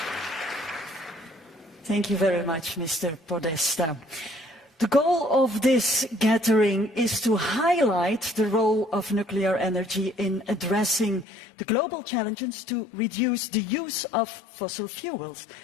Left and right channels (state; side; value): drops out; right; at 11.2 s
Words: Thank you very much, Mr. Podesta. The goal of this gathering is to highlight the role of nuclear energy in addressing the global challenges to reduce the use of fossil fuels,